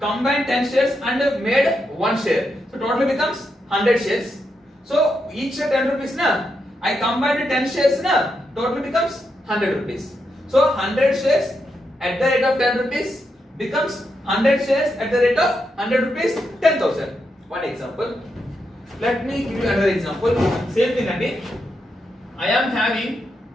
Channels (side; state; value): both; normal; correlation 0.83